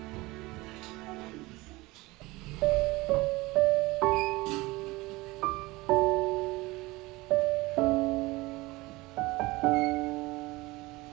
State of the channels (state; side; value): quieter; left; 21.4 dB